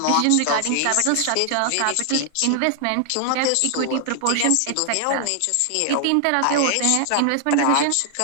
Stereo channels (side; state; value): both; different; correlation 0.00